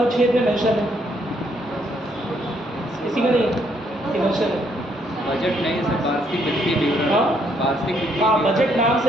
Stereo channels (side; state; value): both; normal; correlation 0.71